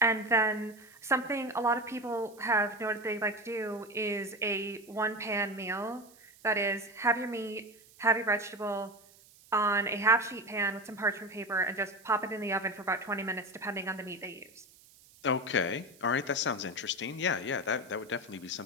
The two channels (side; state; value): right; noise; hiss, 25 dB below the sound